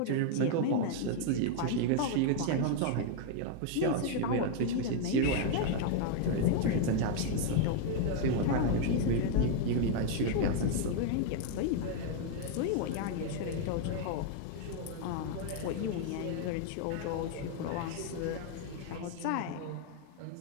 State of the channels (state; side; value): different; both; correlation 0.00